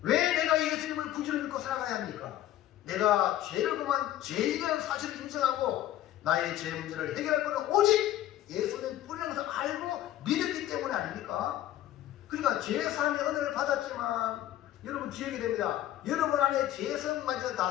왜 내가 예수님을 구주로 믿고 살아가야 합니까? 내가 죄를 범한 죄인이라는 사실을 인정하고 나의 죄 문제를 해결할 것은 오직 예수님 뿐이라는 것을 알고 믿었기 때문에 아닙니까? 그러니까 죄사함의 은혜를 받았지만 여러분 기억이 됩니다. 여러분 안에 죄성마저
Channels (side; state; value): right; quieter; 13.1 dB